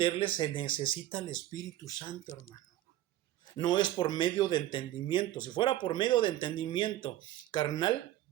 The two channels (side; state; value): left; quieter; 14.2 dB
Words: se necesita el Espíritu Santo, hermano. No es por medio de entendimiento. Si fuera por medio de entendimiento carnal,